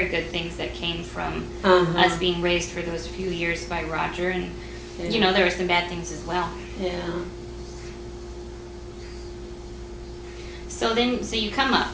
good things that came from Uh-huh. us being raised for those few years by Roger, and Yeah. you know, there were some bad things as well. Yeah. So you come up,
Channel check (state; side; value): identical; both; correlation 1.00